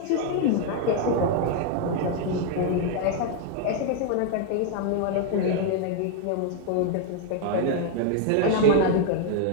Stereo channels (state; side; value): different; both; correlation 0.00